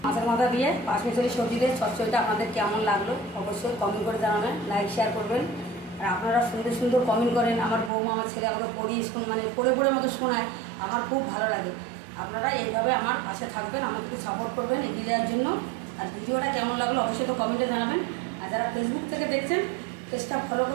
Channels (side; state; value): left; drops out; at 7.9 s